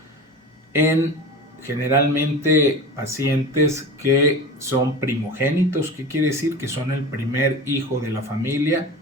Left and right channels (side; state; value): both; normal; correlation 0.31